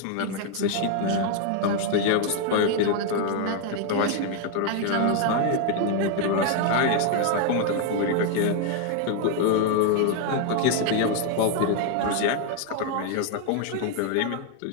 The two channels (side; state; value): both; different; correlation 0.00